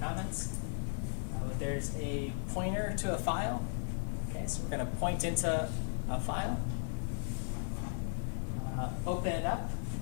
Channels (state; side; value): silent; right; digital silence